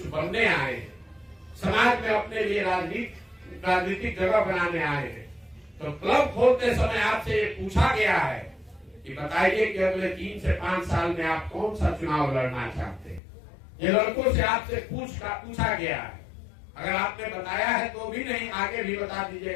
बनने आए हैं, समाज में अपने लिए राजनीतिक जगह बनाने आए हैं, तो क्लब खोलते समय आपसे ये पूछा गया है कि बताइए कि अगले 3 से 5 साल में आप कौन सा चुनाव लड़ना चाहते हैं। ये लड़कों से आपसे पूछा गया है। अगर आपने बताया है तो भी नहीं, आगे भी बता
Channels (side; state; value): right; drops out; at 13.2 s